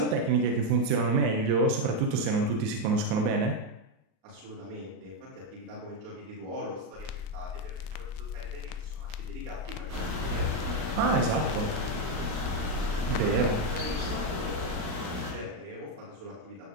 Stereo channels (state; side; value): late; left; 38 ms